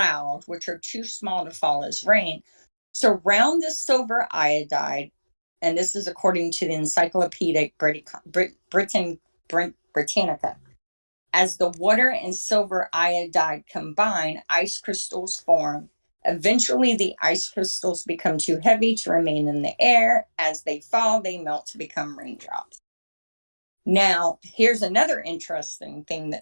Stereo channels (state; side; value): inverted; both; correlation -1.00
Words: which are too small to fall as rain, surround the silver iodide, and this is according to the Encyclopedia Britannica. As the water and silver iodide combine, ice crystals form. Eventually, the ice crystals become too heavy to remain in the air. As they fall, they melt to become raindrops. Now, here's another interesting thing